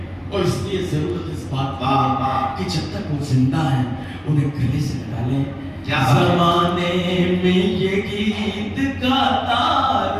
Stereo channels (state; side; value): identical; both; correlation 1.00